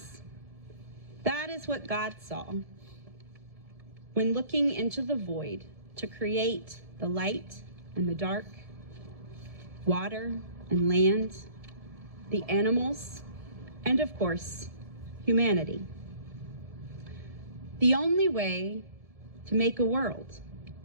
that is what God saw when looking into the void to create the light and the dark, water and land, the animals, and of course, humanity. The only way to make a world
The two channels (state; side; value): late; left; 1.7 ms